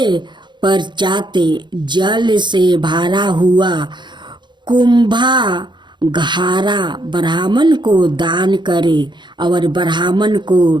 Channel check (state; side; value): late; left; 0.22 ms